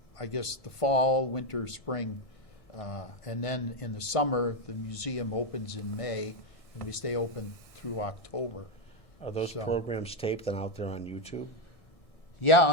fall, winter, spring. And then in the summer, the museum opens in May, and we stay open through October. Are those So- programs taped and out there on YouTube? Yeah,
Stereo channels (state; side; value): late; right; 1.6 ms